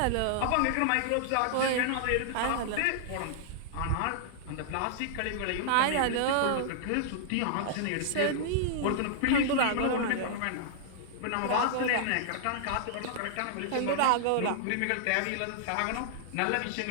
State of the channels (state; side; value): different; both; correlation -0.01